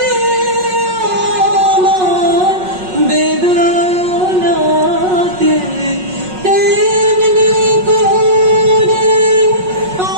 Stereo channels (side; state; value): left; late; 5.4 ms